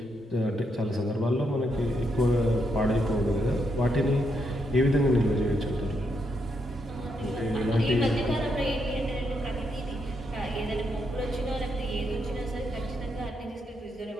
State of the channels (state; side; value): normal; both; correlation 0.79